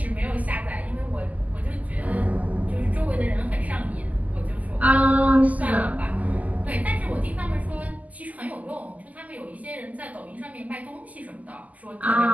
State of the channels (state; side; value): late; left; 0.076 ms